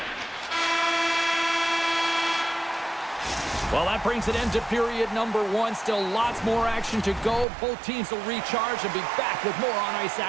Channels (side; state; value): left; drops out; at 7.5 s